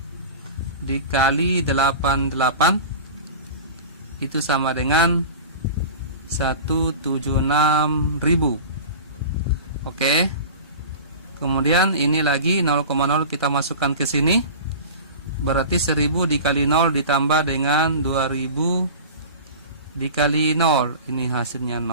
dikali 88 itu sama dengan 176.000. Oke. Kemudian ini lagi 0,0 kita masukkan ke sini. Berarti 1000 dikali 0 ditambah dengan 2000 dikali 0. Ini hasilnya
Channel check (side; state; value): both; inverted; correlation -0.34